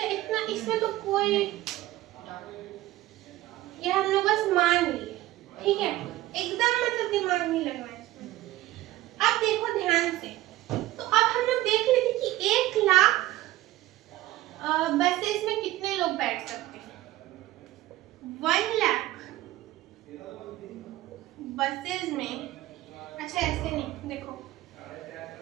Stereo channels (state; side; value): quieter; left; 16.3 dB